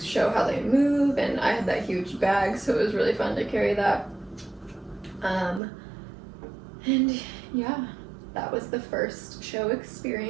show how they move. And I had that huge bag, so it was really fun to carry that. And yeah, that was the first show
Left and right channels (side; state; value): left; drops out; at 5.6 s